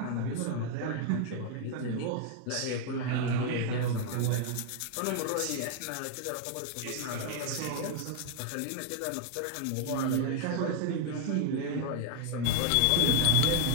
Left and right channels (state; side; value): different; both; correlation 0.00